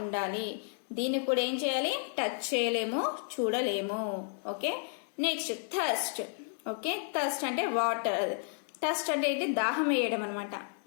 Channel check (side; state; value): right; silent; 56 dB below the other